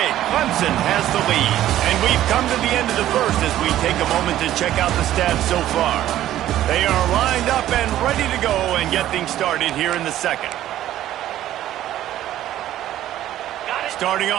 Clemson has the lead. And we've come to the end of the first as we take a moment to check out the stats so far. They are lined up and ready to go and get things started here in the second. Starting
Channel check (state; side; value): quieter; left; 13.0 dB